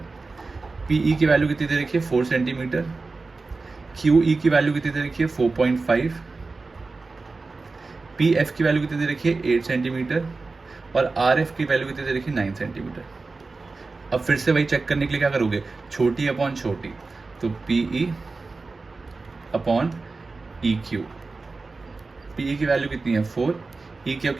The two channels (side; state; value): left; quieter; 3.8 dB